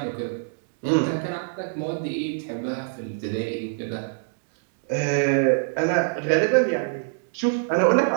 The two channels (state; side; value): silent; left; digital silence